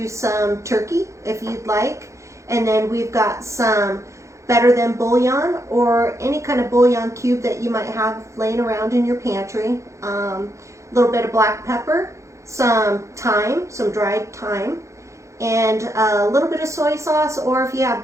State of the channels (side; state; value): left; late; 0.15 ms